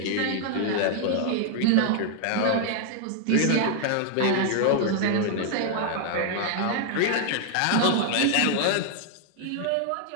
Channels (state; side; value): different; both; correlation 0.00